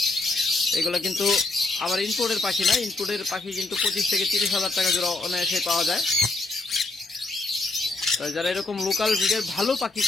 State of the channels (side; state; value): right; quieter; 3.2 dB